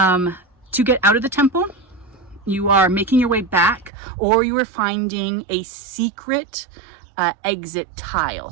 get out of the temple, you are making your way back, or you are finding a secret exit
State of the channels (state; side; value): drops out; left; at 3.9 s